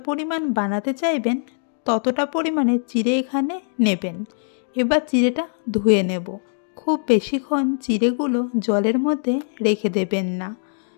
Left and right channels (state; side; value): silent; right; digital silence